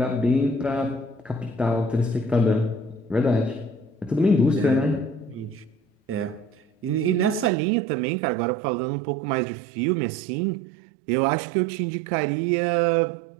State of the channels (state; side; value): drops out; left; at 7.5 s